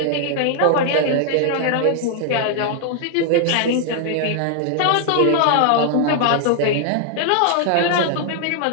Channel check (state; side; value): different; both; correlation 0.00